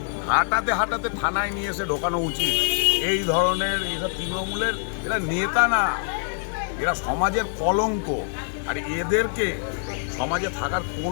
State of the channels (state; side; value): silent; right; 62 dB below the other